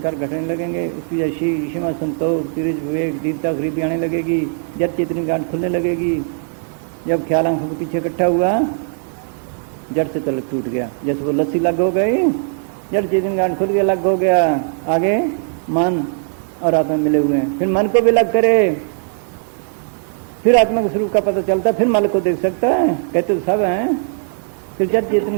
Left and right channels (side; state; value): left; silent; digital silence